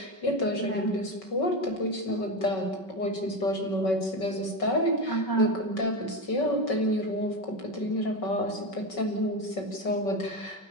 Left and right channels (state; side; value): late; right; 5.3 ms